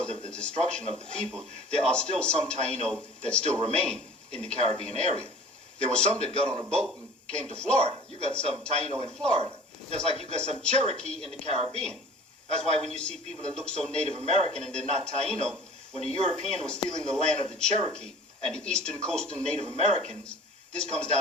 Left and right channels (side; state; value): both; normal; correlation 0.44